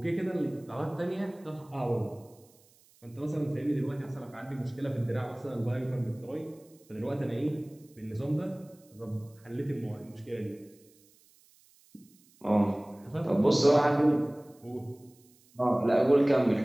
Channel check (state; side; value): noise; right; hiss, 30 dB below the sound